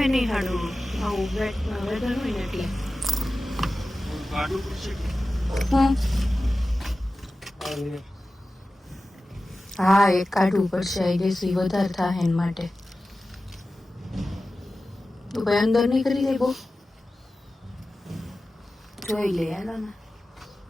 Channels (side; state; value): both; normal; correlation 0.95